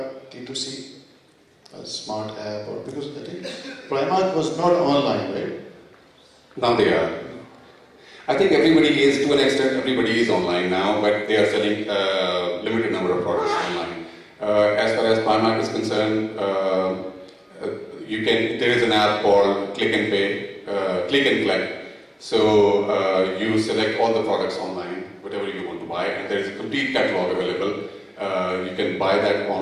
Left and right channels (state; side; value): identical; both; correlation 1.00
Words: D2C, a smart app, or because I think Primark was not online, right? Now they are. I think everybody is, to an extent, everybody is online now, but they are selling a limited number of products online. As far as Primark is concerned, there is an app called Click and Pay, Click and Collect. So you select all the products online, whatever you want to buy, and there is a complete catalog available. You can buy that